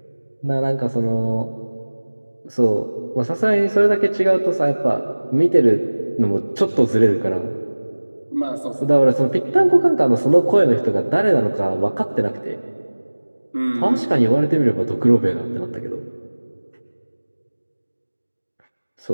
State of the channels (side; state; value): both; inverted; correlation -1.00